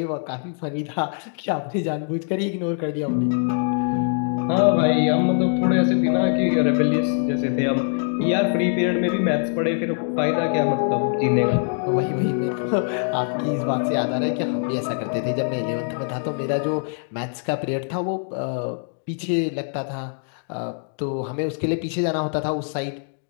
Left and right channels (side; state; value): right; silent; 63 dB below the other